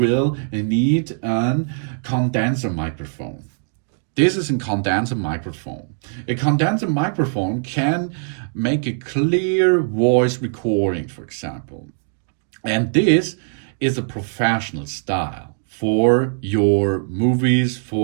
need a condenser microphone. This is a condenser microphone. A condenser microphone can make a clear voice recording, for example. And this is a professional style for your movies,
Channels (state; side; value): silent; left; 65 dB below the other